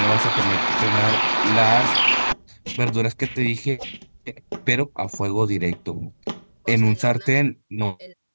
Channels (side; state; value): both; inverted; correlation -1.00